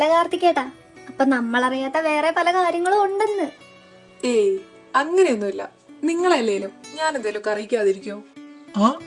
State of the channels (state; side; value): identical; both; correlation 1.00